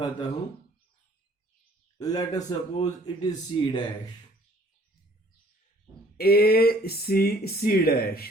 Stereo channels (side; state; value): both; normal; correlation 0.57